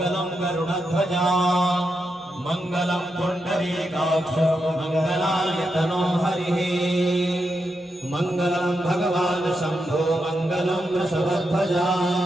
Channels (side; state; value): both; normal; correlation 0.85